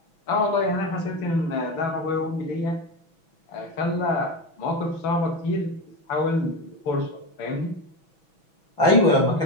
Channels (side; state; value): right; late; 6.1 ms